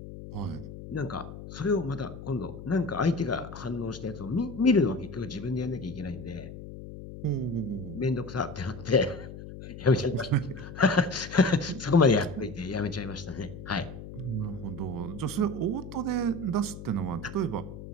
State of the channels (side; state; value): left; noise; hum, 12 dB below the sound